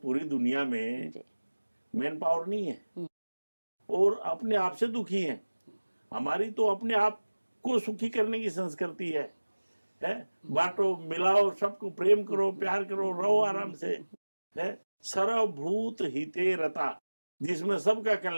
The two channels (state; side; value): inverted; both; correlation -1.00